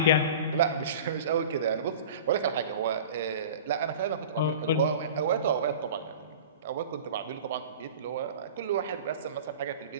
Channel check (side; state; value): both; inverted; correlation -0.39